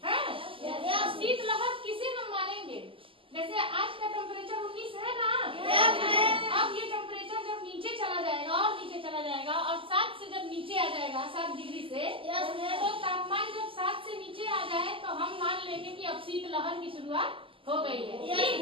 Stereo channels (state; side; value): late; left; 0.25 ms